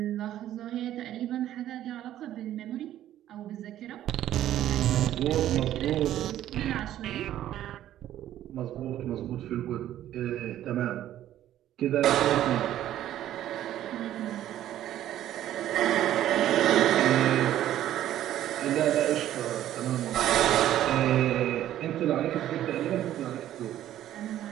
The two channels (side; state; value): left; quieter; 12.4 dB